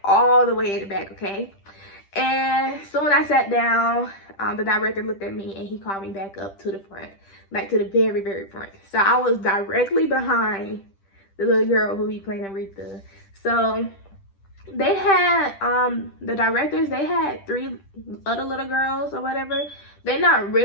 all the way in the back, okay? And so when I sat down, the director looked at me and he called me back up to the front, like to the very, very front. So I was directly behind the little girl who be playing Aretha. So they had, the directors, they had 3 other little girls or whatever. They're not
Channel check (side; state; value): right; late; 10 ms